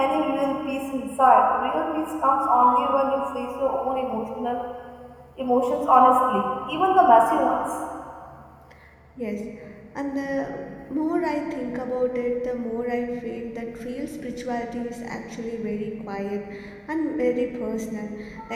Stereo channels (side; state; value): both; identical; correlation 1.00